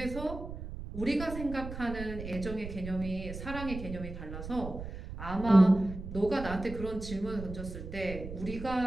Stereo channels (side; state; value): right; noise; rumble, 9 dB below the sound